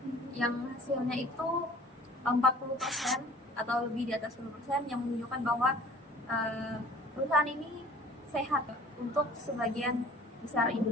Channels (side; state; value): both; normal; correlation 0.49